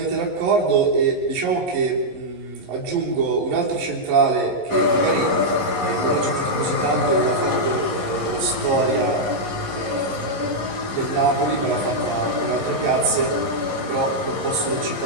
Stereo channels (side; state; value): left; late; 11 ms